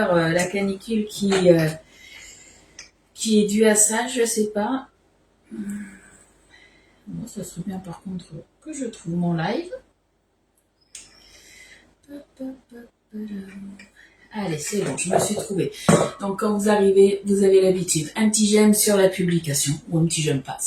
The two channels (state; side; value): identical; both; correlation 1.00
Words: la canicule qui est due à ça? Je sais pas. Bon, ça serait bien par contre que je trouve mon live. Allez, c'est bon, je me suis trouvée. Donc quand vous arrivez, vous avez l'habitude. Un petit j'aime sur la publication. Ou un petit j'aime pas.